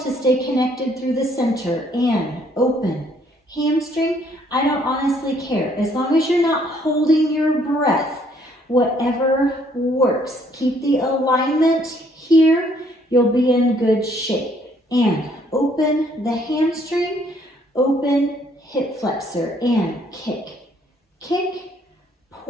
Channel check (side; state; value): both; normal; correlation 0.65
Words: stay connected through the center and open. Hamstring, I don't honestly care. As long as you're not holding your breath, whatever works. Keep the alignment here. You'll be in good shape. And open the hamstring, open hip flexor and kick. Kick,